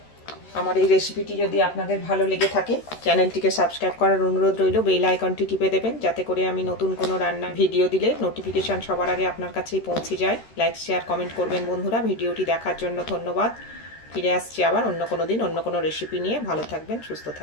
আমার এই রেসিপিটি যদি আপনাদের ভালো লেগে থাকে, চ্যানেলটিকে সাবস্ক্রাইব করার অনুরোধ রইল। বেল আইকনটি টিপে দেবেন, যাতে করে আমি নতুন কোনো রান্নার ভিডিও দিলে নোটিফিকেশান সবার আগে আপনার কাছেই পৌঁছে যায়। লাইক, শেয়ার, কমেন্ট করবেন বন্ধুরা। ভিডিওটি দেখার জন্য ধন্যবাদ। ফিরে আসছি আবার অন্য কোনো দিন অন্য কোনো রেসিপি নিয়ে। ভালো থাকবেন, সুস্থ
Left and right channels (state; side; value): late; right; 13 ms